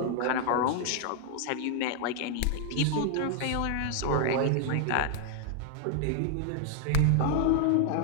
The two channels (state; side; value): different; both; correlation 0.00